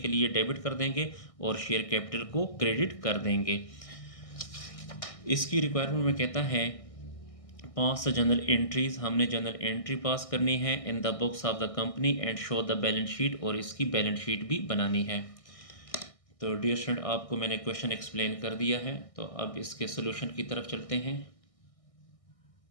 लिए डेबिट कर देंगे और शेयर कैपिटल को क्रेडिट कर देंगे। इसकी रिक्वायरमेंट में कहता है पास द जनरल एंट्रीज, हमने जनरल एंट्री पास करनी है in the books of the company and show the balance sheet, और इसकी बैलेंस शीट भी बनानी है। तो डियर स्टूडेंट, आपको मैंने क्वेश्चन एक्सप्लेन कर दिया है, तो अब इसके सोल्यूशन की तरफ चलते हैं।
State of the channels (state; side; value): late; right; 1.6 ms